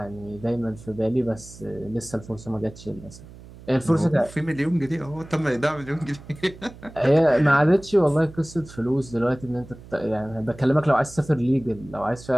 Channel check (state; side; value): noise; right; hum, 18 dB below the sound